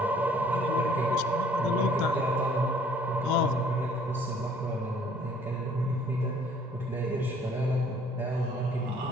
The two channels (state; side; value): normal; both; correlation 0.58